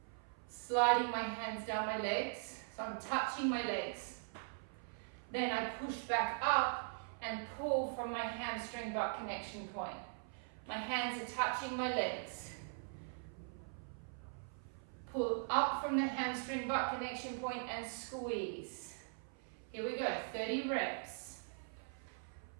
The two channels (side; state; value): left; silent; 50 dB below the other